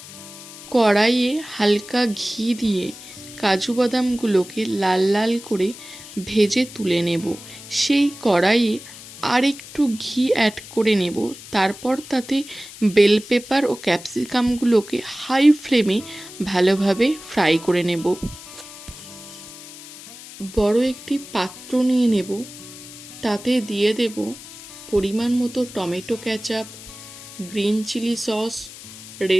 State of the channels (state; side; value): noise; left; hiss, 16 dB below the sound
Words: কড়াইয়ে হালকা ঘি দিয়ে কাজু বাদামগুলোকে লাল লাল করে ভেজে তুলে নেব। সেই কড়াইয়ে আর একটু ঘি অ্যাড করে নেব। তারপর তাতে বেল পেপার ও ক্যাপসিকামগুলোকে হাই ফ্লেমে ভালোভাবে ফ্রাই করে নেব। বড় একটি পাত্র নিয়ে নেব। তাতে দিয়ে দেব পরিমাণ মতো tomato ketchup, green chilli sauce,